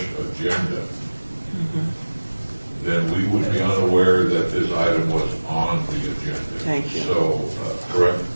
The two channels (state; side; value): inverted; both; correlation -1.00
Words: agenda, then we would be unaware that this item was on the agenda. Thank you. So, correct?